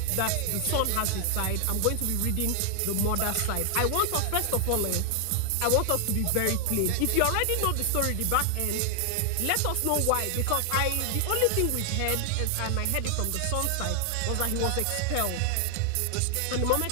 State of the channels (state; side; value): different; both; correlation 0.00